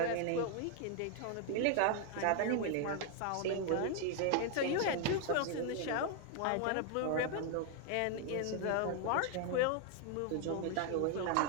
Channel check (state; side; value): different; both; correlation 0.00